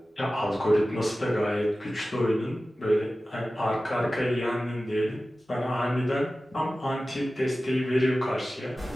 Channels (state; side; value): normal; both; correlation 0.95